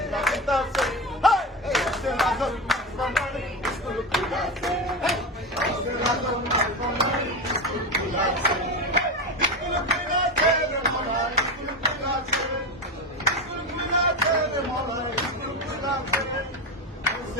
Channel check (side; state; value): both; normal; correlation 0.19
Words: লাগতাছে। স্কুল খুলেছে,